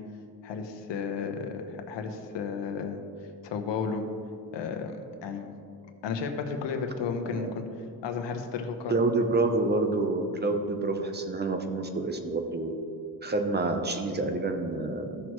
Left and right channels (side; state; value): both; normal; correlation 0.22